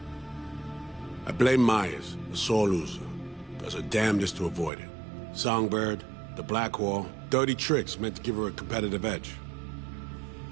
I blame Myers, the sore loser. Does her damnedest to avoid it. Songbird, the Blackwall, dirty tricks meant to give her a competitive edge.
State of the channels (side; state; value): left; drops out; at 4.7 s